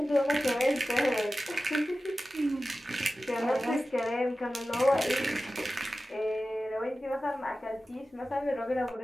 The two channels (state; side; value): normal; both; correlation 0.95